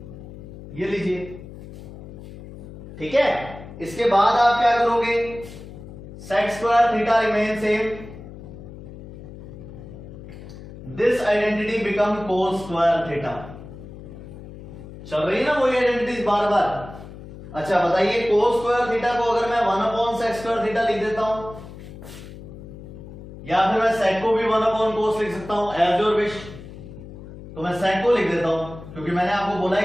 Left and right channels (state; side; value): noise; left; hum, 14 dB below the sound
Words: ये लीजिए। ठीक है, इसके बाद आप क्या करोगे, sec square theta remain same, this identity become cos square theta. चल रही है ना वही आइडेंटिटीज बार बार। अच्छा बताइए, cos स्क्वायर थीटा को अगर मैं 1 अपॉन sec स्क्वायर थीटा लिख देता हूं, या फिर मैं sec को भी 1 अपॉन cos लिख सकता हूं, एज योर विश। तो मैं sec को लिख देता हूं, क्योंकि मैंने आपको बोला